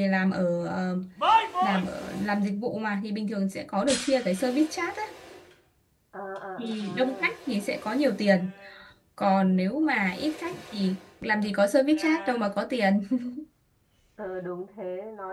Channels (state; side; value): identical; both; correlation 1.00